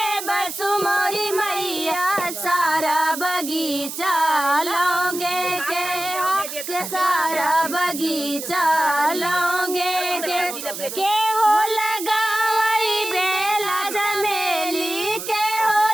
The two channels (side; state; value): right; noise; hiss, 8 dB below the sound